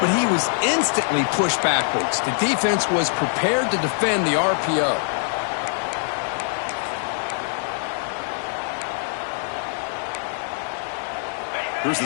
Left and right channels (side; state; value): right; silent; digital silence